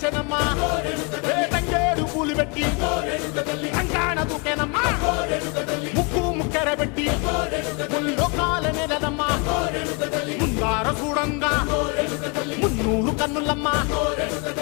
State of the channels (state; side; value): quieter; right; 32.0 dB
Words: తంగేడు పూలు పెట్టి కంకాణ దూకేనమ్మా ముక్కు ముక్కెర పెట్టి ముల్లోకాల నెలనమ్మా ముందార చూడంగా మున్నూరు కన్నులమ్మా